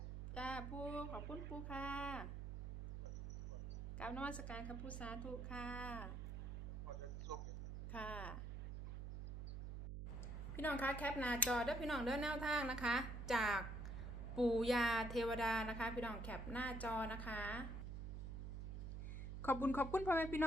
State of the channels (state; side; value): noise; right; hum, 5 dB below the sound